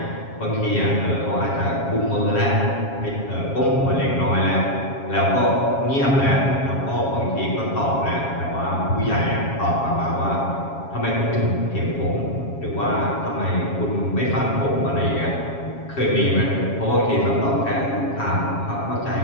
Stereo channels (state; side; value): late; right; 7.3 ms